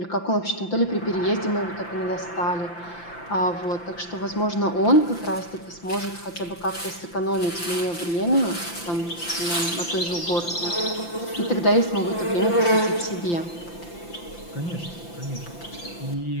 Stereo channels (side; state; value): right; late; 5.8 ms